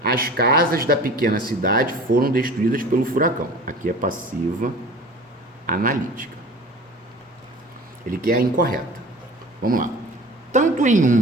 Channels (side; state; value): both; normal; correlation 0.40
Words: As casas da pequena cidade foram destruídas pelo furacão. Aqui é passiva analítica. Ele quer a incorreta. Vamos lá. Tanto em